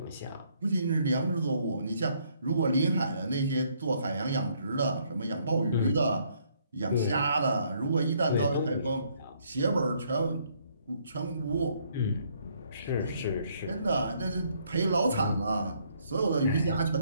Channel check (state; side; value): inverted; both; correlation -0.68